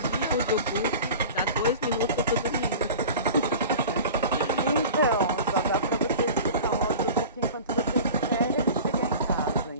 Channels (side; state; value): both; inverted; correlation -0.38